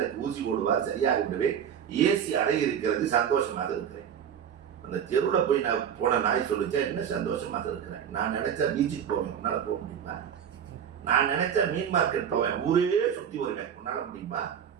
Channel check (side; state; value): left; quieter; 8.5 dB